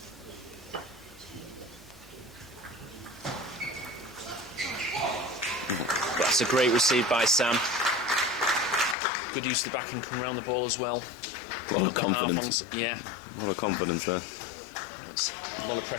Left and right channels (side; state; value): right; drops out; at 9.0 s